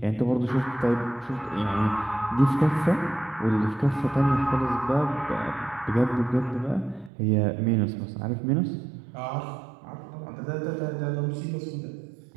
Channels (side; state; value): left; drops out; at 7.1 s